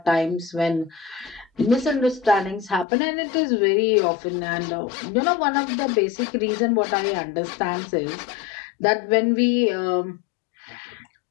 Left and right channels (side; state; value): right; drops out; at 2.9 s